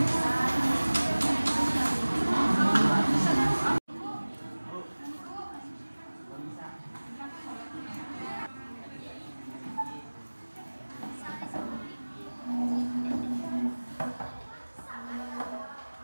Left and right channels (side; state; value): both; inverted; correlation -1.00